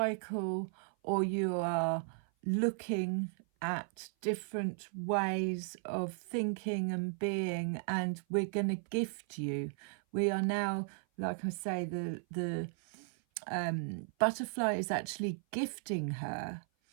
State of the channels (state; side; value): silent; left; 54 dB below the other